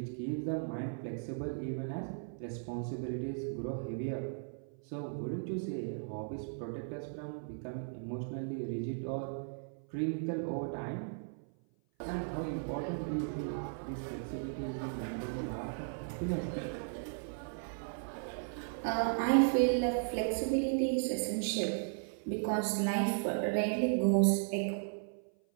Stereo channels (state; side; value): silent; left; 54 dB below the other